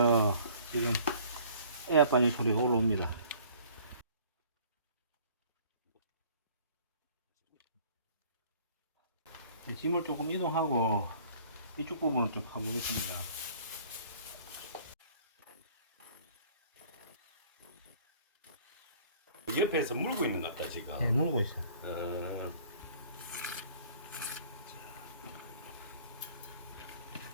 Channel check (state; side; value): inverted; both; correlation -0.53